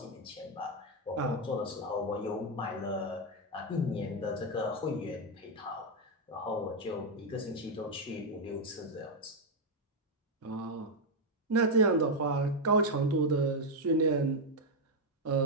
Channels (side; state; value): both; normal; correlation 0.01